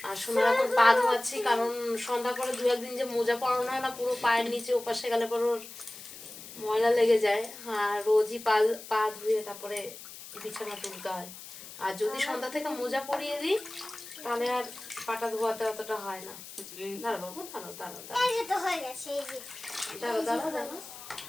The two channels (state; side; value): noise; left; hiss, 14 dB below the sound